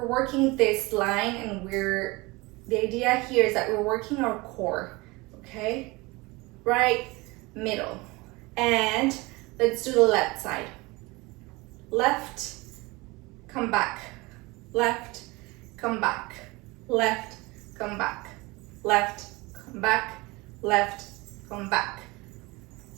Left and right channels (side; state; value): left; quieter; 23.5 dB